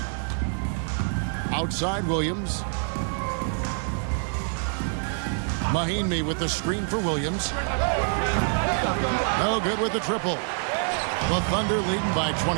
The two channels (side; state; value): left; silent; 61 dB below the other